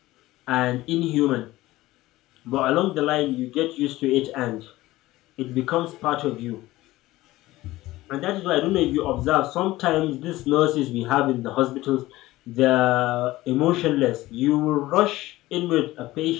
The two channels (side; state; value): right; quieter; 17.6 dB